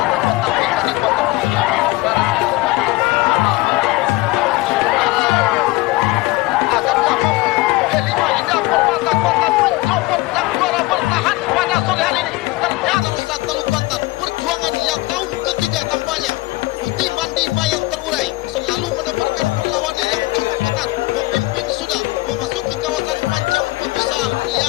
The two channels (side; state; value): right; quieter; 20.7 dB